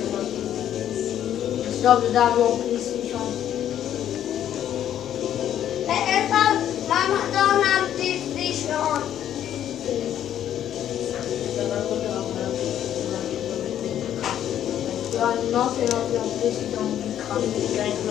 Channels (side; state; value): right; quieter; 10.7 dB